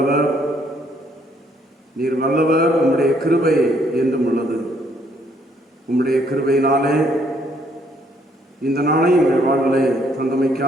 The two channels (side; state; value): both; normal; correlation 0.67